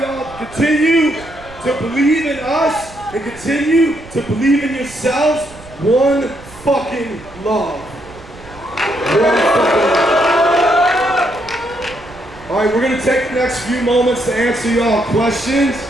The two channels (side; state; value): right; noise; rumble, 20 dB below the sound